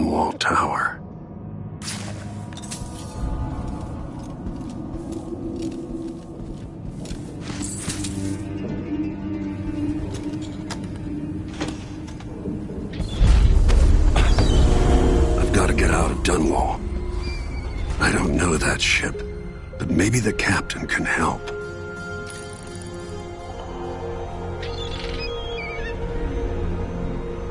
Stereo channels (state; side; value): identical; both; correlation 1.00